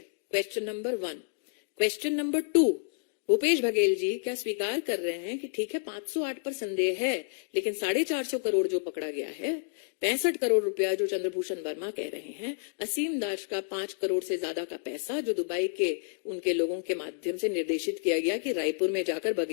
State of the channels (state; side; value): silent; right; digital silence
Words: Question number 1। Question number 2, Bhupesh Baghel ji क्या स्वीकार कर रहे हैं कि ठीक है 508 पर संदेह है, लेकिन 450 करोड़ जो पकड़ा गया है, 65 करोड़ रुपया जो चंद्रभूषण वर्मा कह रहे हैं, असीम दास का 5 करोड़ से ज्यादा का पैसा जो दुबई के उनके लोगों के माध्यम से निर्देशित किया गया कि रायपुर में जाकर